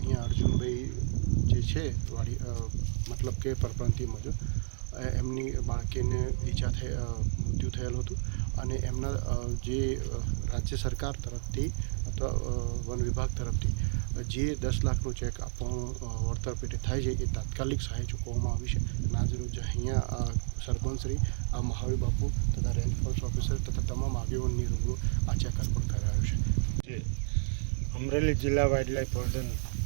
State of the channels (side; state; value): left; silent; digital silence